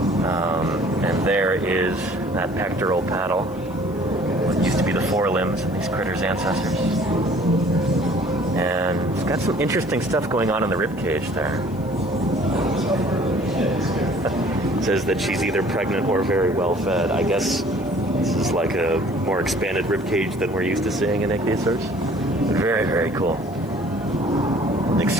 And there is that pectoral paddle. What used to be the forelimbs of these critters' ancestors. And it's got some interesting stuff going on in the rib cage there. It says that she's either pregnant or very well fed. I guess this is like a more expanded rib cage than we're used to seeing in ichthyosaurs. Very, very cool. An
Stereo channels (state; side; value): noise; left; hiss, 26 dB below the sound